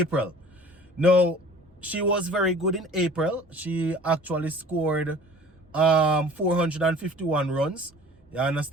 Now, she was very good in April. She actually scored 451 runs. You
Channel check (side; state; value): both; normal; correlation 0.47